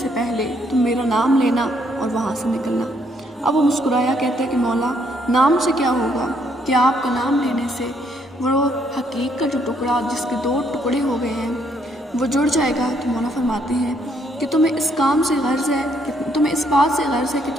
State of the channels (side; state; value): both; normal; correlation 0.70